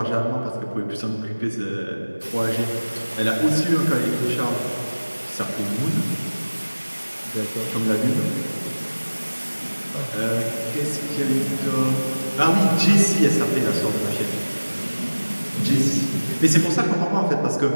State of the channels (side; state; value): both; inverted; correlation -1.00